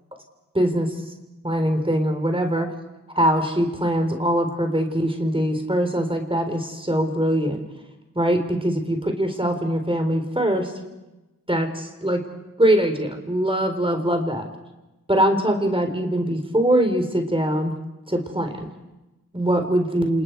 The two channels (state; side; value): normal; both; correlation 0.68